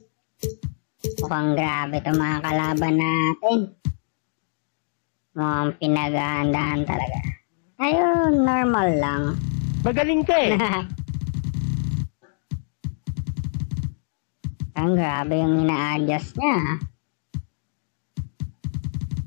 Mukhang grabe itong mga kalaban natin. Mukhang pinaghahandaan talaga. Ayun, normal lang. Magaling ka eh. Ang grabe yung ina-adjust niya.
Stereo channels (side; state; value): right; silent; digital silence